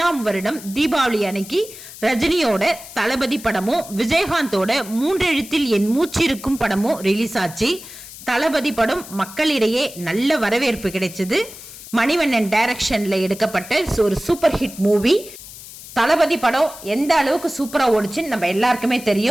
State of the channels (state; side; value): noise; left; hiss, 15 dB below the sound